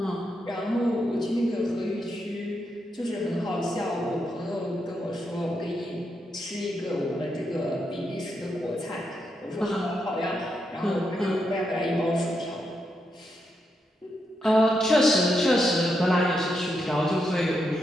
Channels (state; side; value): normal; both; correlation 0.83